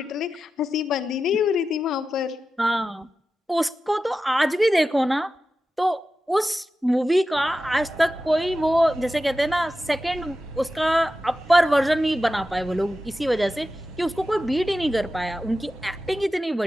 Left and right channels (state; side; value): normal; both; correlation 0.93